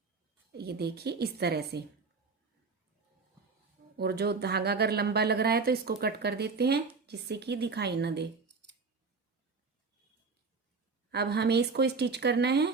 ये देखिए इस तरह से। और जो धागा अगर लंबा लग रहा है तो इसको कट कर देते हैं जिससे कि दिखाई ना दे। अब हमें इसको स्टिच करना है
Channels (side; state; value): left; quieter; 4.5 dB